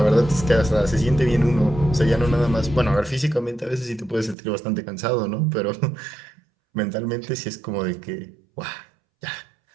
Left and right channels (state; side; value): drops out; left; at 4.4 s